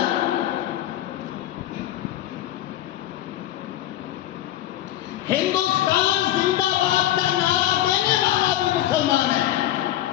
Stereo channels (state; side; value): quieter; right; 13.6 dB